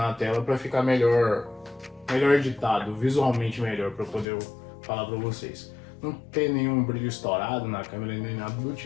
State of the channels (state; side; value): drops out; right; at 4.2 s